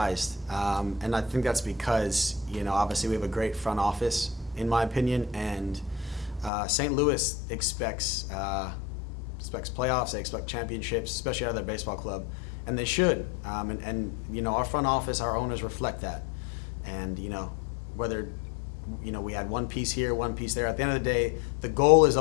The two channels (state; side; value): drops out; right; at 6.5 s